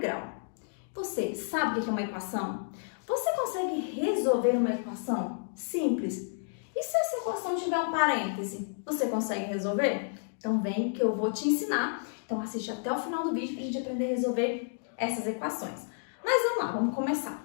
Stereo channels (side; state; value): right; silent; digital silence